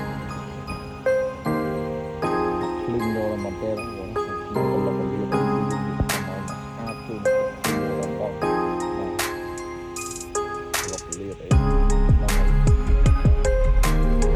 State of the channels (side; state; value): both; identical; correlation 1.00